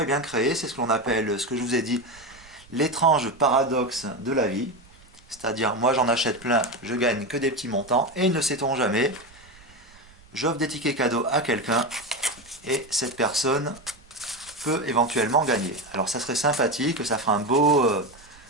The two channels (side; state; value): right; noise; rumble, 26 dB below the sound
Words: bien créer, c'est ce que l'on appelle, ce que je vous ai dit, l'étrange paradoxe de la vie. C'est-à-dire, moi j'en achète plein, je gagne que des petits montants, et ne sait-on jamais, j'offre des tickets cadeaux à quelqu'un, et cette personne peut éventuellement gagner. Alors ça serait sympathique, ça ferait un beau